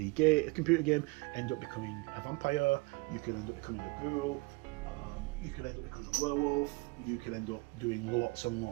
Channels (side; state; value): left; quieter; 26.7 dB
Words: computer game, end up becoming a vampire, you can end up becoming a ghoul, you can end up becoming a werewolf, you can end up doing lots and